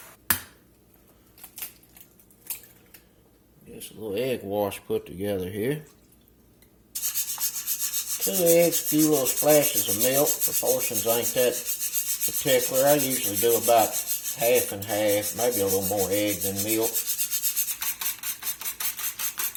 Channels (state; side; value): identical; both; correlation 1.00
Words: Get a little egg wash put together here. 2 eggs, a few little splashes of milk. Proportions ain't that particular. I usually do about half and half, maybe a little more egg than milk.